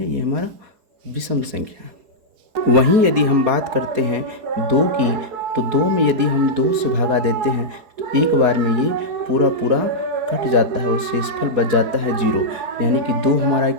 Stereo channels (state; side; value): late; left; 4.7 ms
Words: ये हमारा विषम संख्या है। वहीं यदि हम बात करते हैं 2 की, तो 2 में यदि हम 2 से भगा देते हैं तो एक बार में ये पूरा कट जाता है और शेषफल बच जाता है 0। यानी कि 2 हमारा